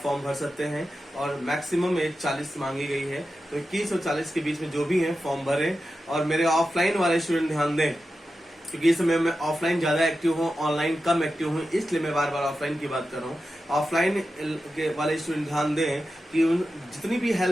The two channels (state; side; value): normal; both; correlation 0.91